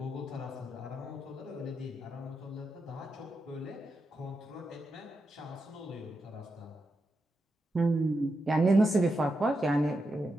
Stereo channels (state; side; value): normal; both; correlation 0.86